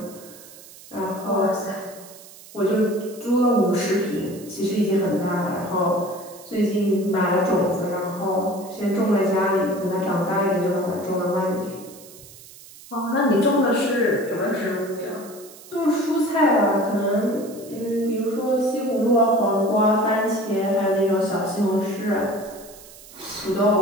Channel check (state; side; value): noise; right; hiss, 19 dB below the sound